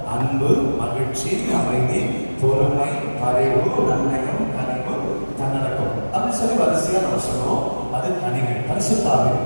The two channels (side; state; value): both; inverted; correlation -1.00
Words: அன்பு, மகிழ்ச்சி, அமைதி, பொறுமை, பரிவு, நன்னயம், கனிவு, தன்னடக்கம் அப்படின்னு சொல்லி வரிசையா நம்ம சொல்லுவோம். அது கனிகள், பரிசுத்த ஆவியின்